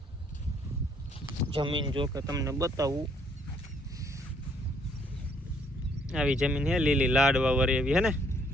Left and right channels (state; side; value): normal; both; correlation 0.66